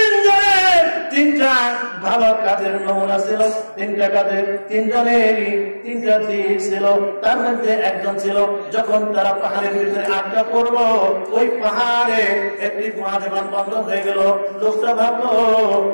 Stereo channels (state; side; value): inverted; both; correlation -1.00